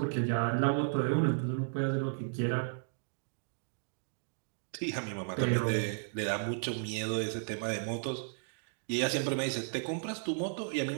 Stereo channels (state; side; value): silent; left; digital silence